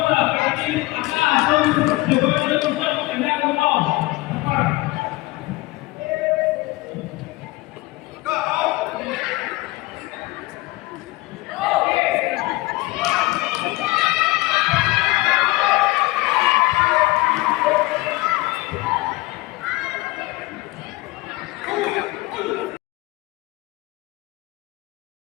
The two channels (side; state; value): right; quieter; 20.7 dB